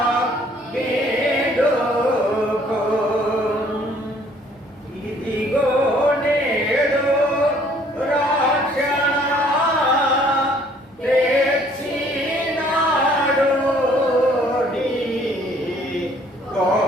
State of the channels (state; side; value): normal; both; correlation 0.60